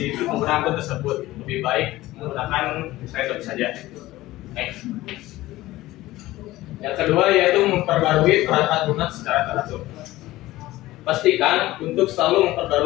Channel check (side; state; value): right; quieter; 17.1 dB